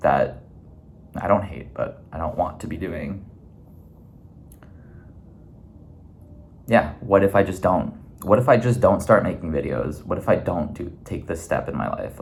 that I don't hate, but I don't want to be doing? Yeah, what if I just don't? What if I just don't start making videos? What if I don't take this step in my life?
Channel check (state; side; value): identical; both; correlation 1.00